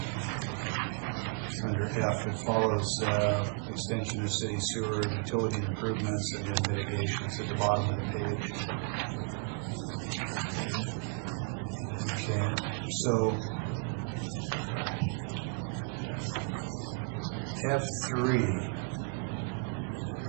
under F. It follows extension of city sewer, utility improvements, and then mitigations at the bottom of the page. Okay, so F3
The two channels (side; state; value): left; quieter; 39.9 dB